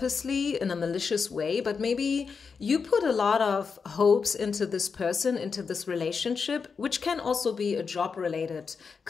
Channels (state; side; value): quieter; right; 5.5 dB